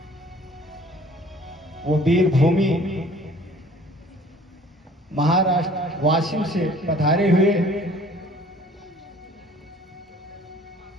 वो वीर भूमि महाराष्ट्र वाशिम से पधारे हुए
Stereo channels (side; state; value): both; normal; correlation 0.53